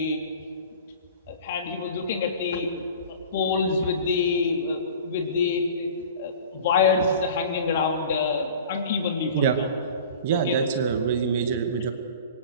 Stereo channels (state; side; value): inverted; both; correlation -0.40